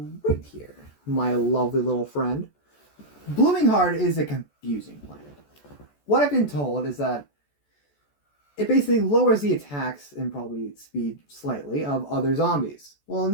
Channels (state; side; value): late; right; 14 ms